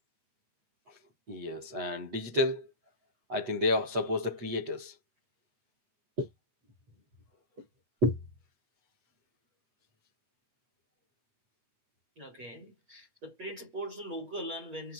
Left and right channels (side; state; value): left; late; 8.2 ms